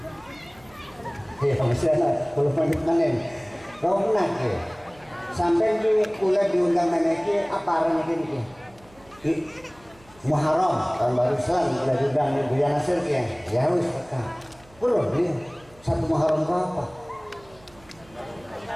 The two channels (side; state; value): right; noise; hum, 26 dB below the sound